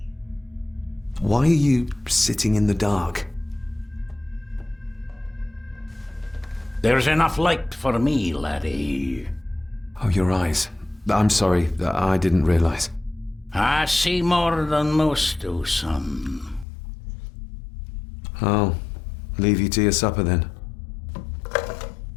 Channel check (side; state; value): right; drops out; at 16.7 s